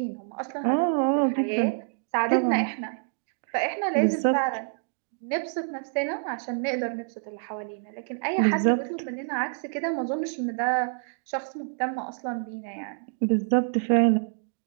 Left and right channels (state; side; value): silent; left; digital silence